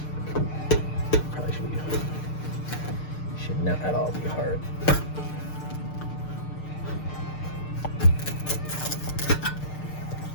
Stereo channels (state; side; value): late; right; 6.6 ms